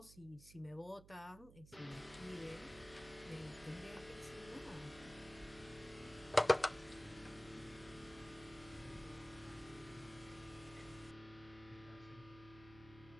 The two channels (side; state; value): right; noise; hum, 18 dB below the sound